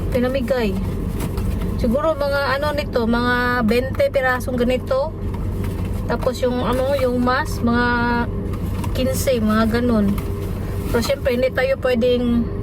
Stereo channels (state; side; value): identical; both; correlation 1.00